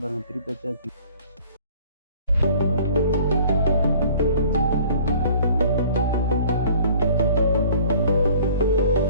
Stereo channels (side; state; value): both; inverted; correlation -0.51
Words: பாருங்கள், திருப்பி வச்சாச்சு.